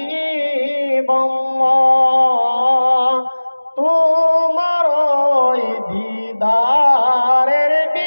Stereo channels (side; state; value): both; inverted; correlation -1.00